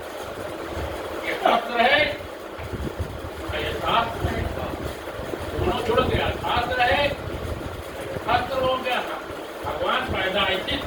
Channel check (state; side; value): identical; both; correlation 1.00